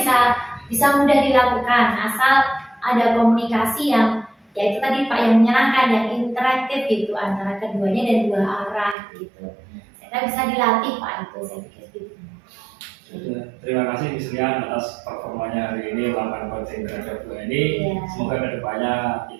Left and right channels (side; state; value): left; drops out; at 9.0 s